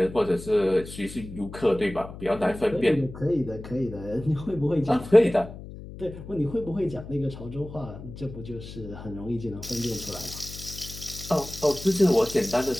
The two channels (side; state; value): left; noise; hum, 13 dB below the sound